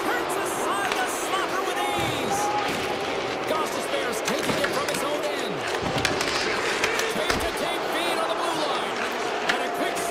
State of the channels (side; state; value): both; identical; correlation 1.00